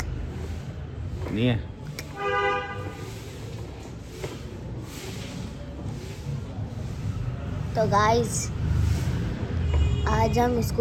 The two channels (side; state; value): both; identical; correlation 1.00